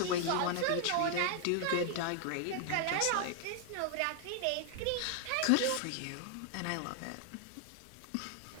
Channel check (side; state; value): both; different; correlation 0.00